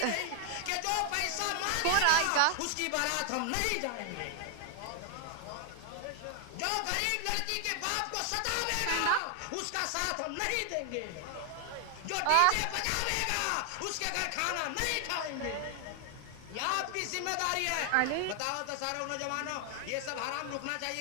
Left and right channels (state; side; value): different; both; correlation 0.00